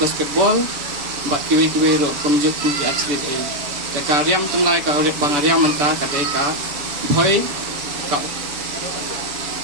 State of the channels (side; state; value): left; late; 6.9 ms